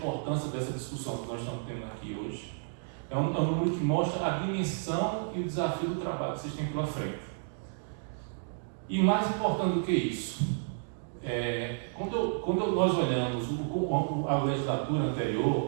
dessa discussão que nós estamos tendo aqui hoje. É um número que mostra a dimensão e o desafio do trabalho que vocês têm pela frente. E mais importante do que isso, quando nós olhamos a legislatura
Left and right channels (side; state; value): left; silent; digital silence